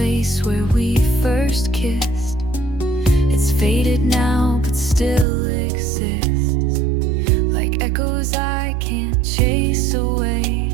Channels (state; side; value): drops out; left; at 5.2 s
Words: where we first kissed. It's faded now, but still exists. Like echoes I can't chase away.